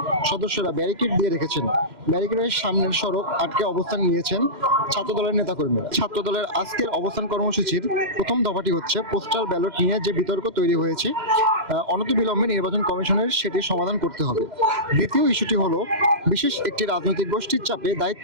সদস্যরা ব্যারিকেড দিয়ে রেখেছেন। ব্যারিকেডের সামনের সড়ক আটকে অবস্থান নিয়েছেন ছাত্রদলের নেতাকর্মীরা। ছাত্রদলের আজকের অবস্থান কর্মসূচির প্রথম দফাটি হচ্ছে পোস্টাল ব্যালট নিয়ে যে বিতর্ক তৈরি হয়েছে, অনতিবিলম্বে নির্বাচন কমিশনের সেটি সমাধান করতে হবে। দ্বিতীয় ইস্যুটি হলো বিশেষ একটি রাজনৈতিক গোষ্ঠীর চাপে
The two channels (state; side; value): late; left; 2.1 ms